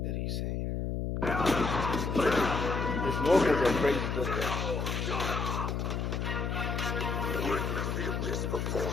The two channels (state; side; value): noise; left; hum, 1 dB below the sound